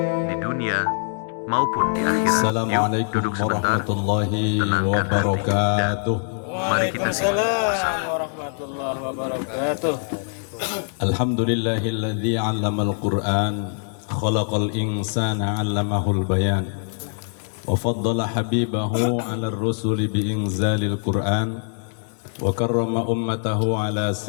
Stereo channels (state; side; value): silent; right; digital silence